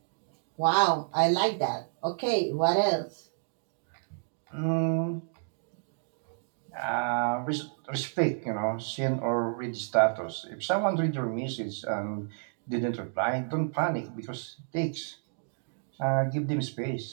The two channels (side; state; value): left; silent; digital silence